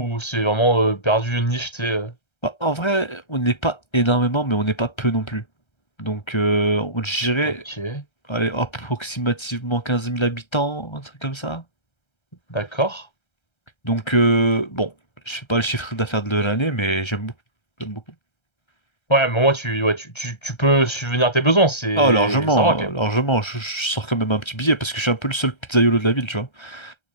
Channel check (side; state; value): right; late; 1.3 ms